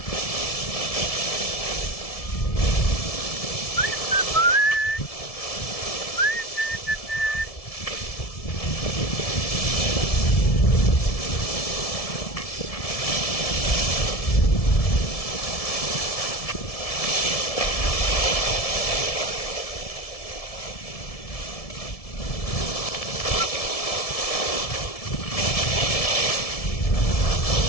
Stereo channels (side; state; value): right; late; 1.7 ms